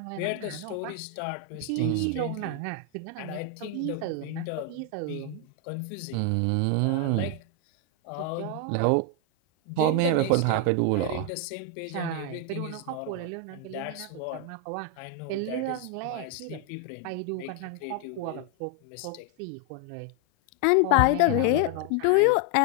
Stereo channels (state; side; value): different; both; correlation 0.01